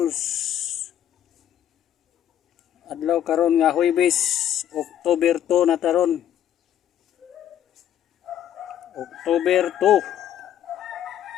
Adlaw karon nga Huwebes, October 2 na taron. October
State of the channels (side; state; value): right; quieter; 10.7 dB